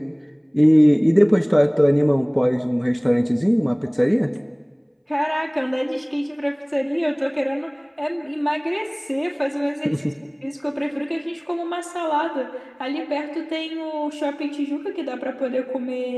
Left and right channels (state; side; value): identical; both; correlation 1.00